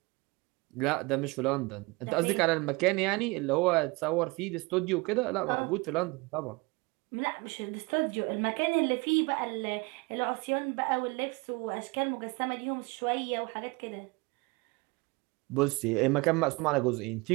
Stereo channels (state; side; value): quieter; left; 26.0 dB